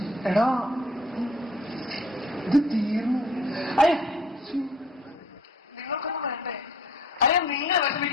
എടാ ഇത് തീർന്നു. അയ്യ നിങ്ങൾക്കൊന്നും വേണ്ടേ? അയ്യ നിങ്ങൾ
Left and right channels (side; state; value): both; normal; correlation 0.55